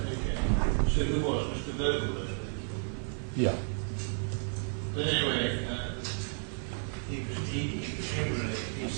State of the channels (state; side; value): silent; left; 56 dB below the other